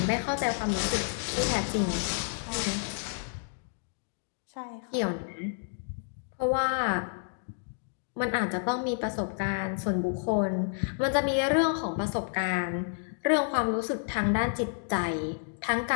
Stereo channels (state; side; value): silent; right; digital silence